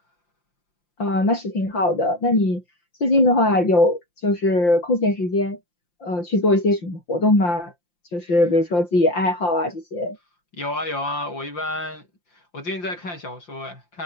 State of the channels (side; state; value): right; late; 5.8 ms